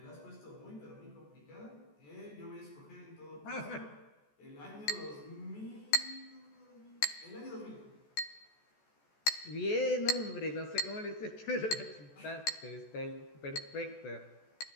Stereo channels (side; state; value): right; late; 14 ms